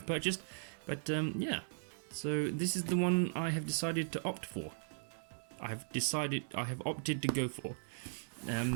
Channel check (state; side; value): silent; left; digital silence